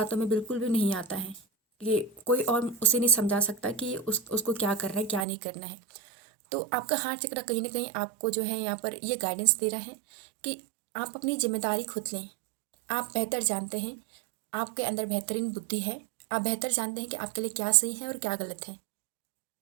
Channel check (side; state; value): left; drops out; at 5.2 s